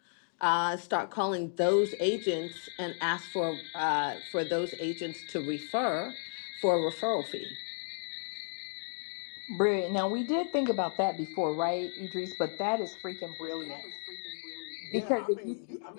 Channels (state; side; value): silent; right; digital silence